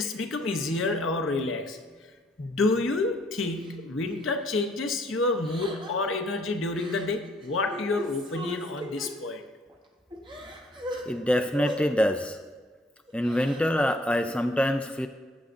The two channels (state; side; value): normal; both; correlation 0.62